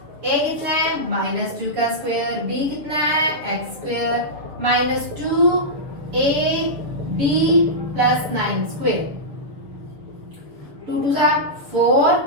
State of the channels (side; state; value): left; late; 7.0 ms